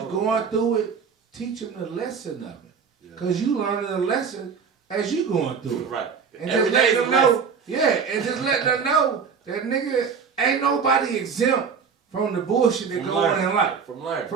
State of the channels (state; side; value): quieter; left; 6.1 dB